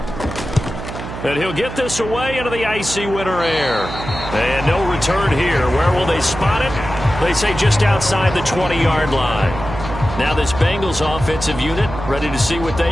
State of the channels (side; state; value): right; noise; hum, 9 dB below the sound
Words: And he'll get this away into the icy winter air. And no return here. Where will they spot it? They say just outside the 20-yard line. Now this Bengals offensive unit ready to see what